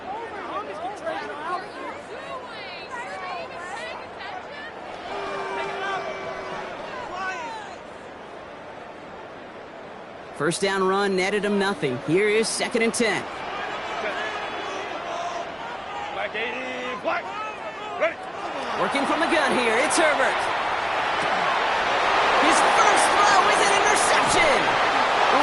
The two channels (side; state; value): both; identical; correlation 1.00